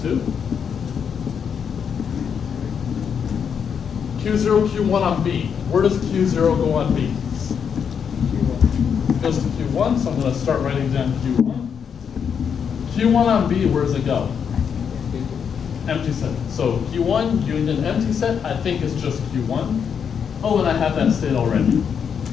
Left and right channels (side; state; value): right; quieter; 7.2 dB